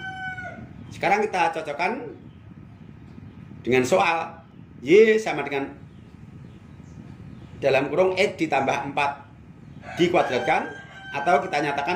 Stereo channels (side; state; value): both; identical; correlation 1.00